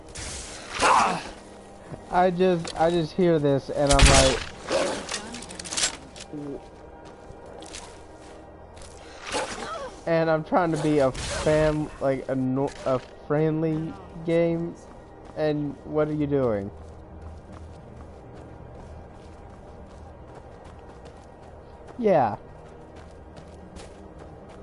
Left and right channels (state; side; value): identical; both; correlation 1.00